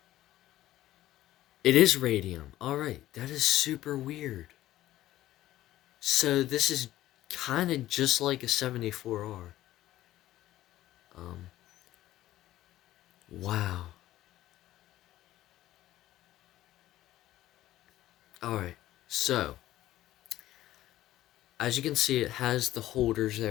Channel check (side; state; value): right; quieter; 14.6 dB